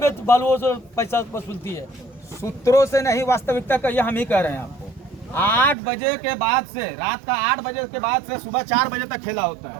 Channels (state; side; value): drops out; left; at 5.8 s